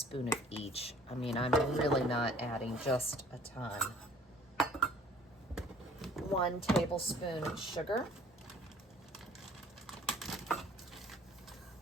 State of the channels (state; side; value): normal; both; correlation 0.54